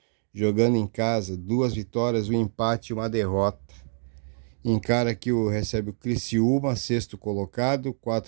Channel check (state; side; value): silent; left; 59 dB below the other